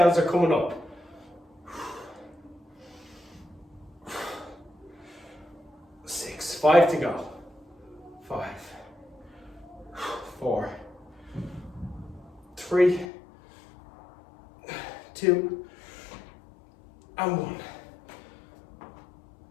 are coming up. 6. 5 to go. 5, 4, 3, 2, and 1.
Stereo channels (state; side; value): drops out; right; at 13.1 s